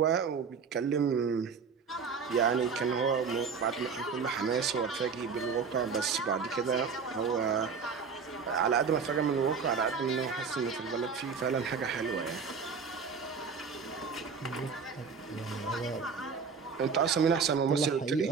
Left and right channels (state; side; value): quieter; left; 5.6 dB